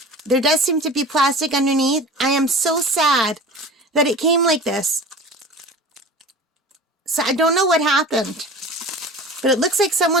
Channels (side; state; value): both; normal; correlation 0.37